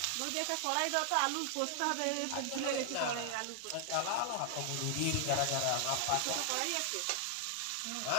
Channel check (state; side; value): different; both; correlation 0.00